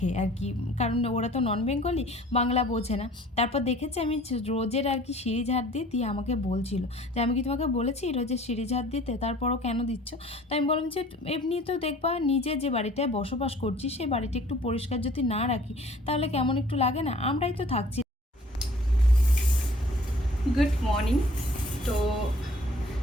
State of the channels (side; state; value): both; normal; correlation 0.52